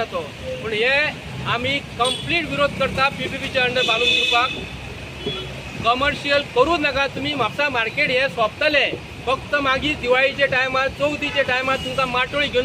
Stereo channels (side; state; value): both; identical; correlation 1.00